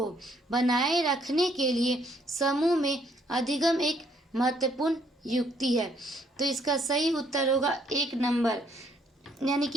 बनाए रखने के लिए समूह में अधिगम एक महत्वपूर्ण युक्ति है। तो इसका सही उत्तर होगा 1 नंबर, यानी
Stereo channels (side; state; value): both; normal; correlation 0.68